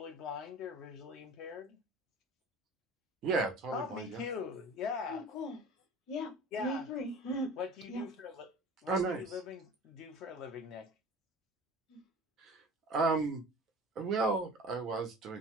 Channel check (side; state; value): both; normal; correlation 0.40